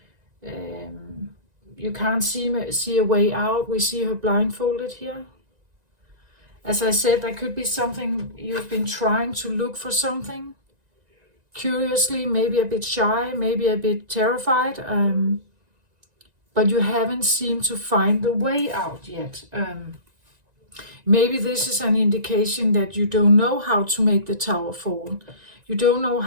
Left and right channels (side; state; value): left; late; 1.9 ms